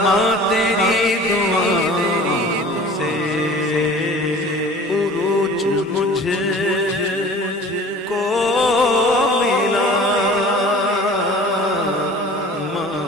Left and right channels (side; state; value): both; normal; correlation 0.44